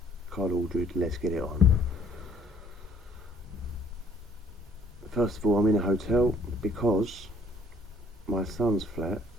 Carl Aldred. Let's get it on. First of all, I'm in a hotel because my son's flat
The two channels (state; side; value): normal; both; correlation 0.60